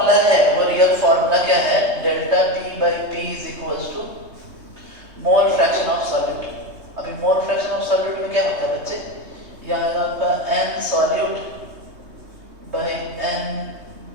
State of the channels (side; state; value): left; late; 3.2 ms